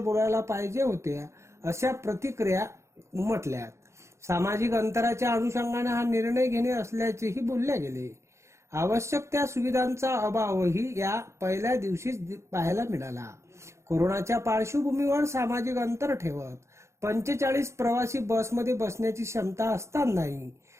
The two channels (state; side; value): late; left; 0.14 ms